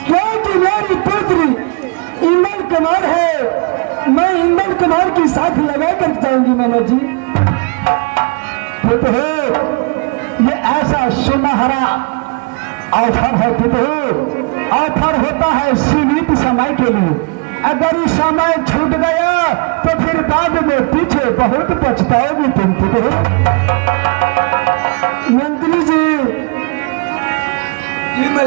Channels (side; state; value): left; quieter; 31.9 dB